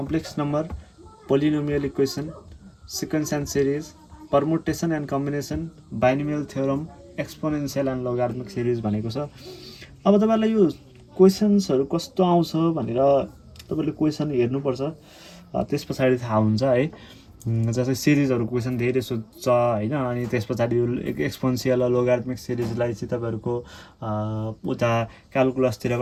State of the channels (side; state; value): both; identical; correlation 1.00